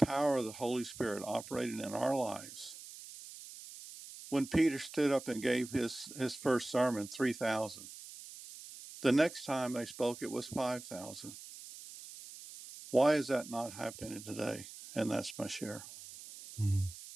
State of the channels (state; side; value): noise; right; hiss, 14 dB below the sound